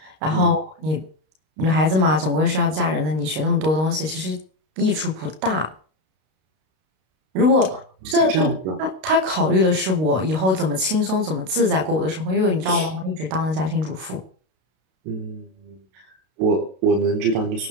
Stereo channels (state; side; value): late; left; 32 ms